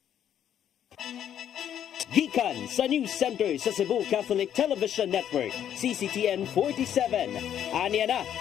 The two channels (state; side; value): quieter; right; 9.9 dB